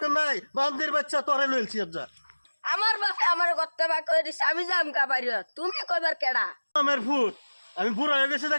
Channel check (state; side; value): inverted; both; correlation -1.00